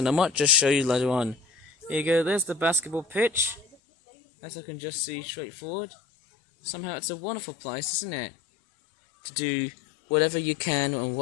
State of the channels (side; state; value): right; drops out; at 3.8 s